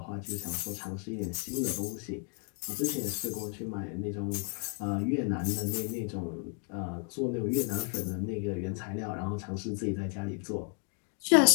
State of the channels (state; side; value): quieter; right; 39.6 dB